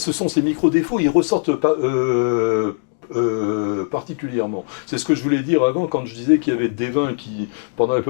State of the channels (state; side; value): silent; right; digital silence